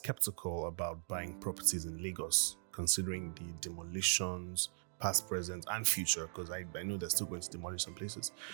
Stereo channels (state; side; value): silent; left; digital silence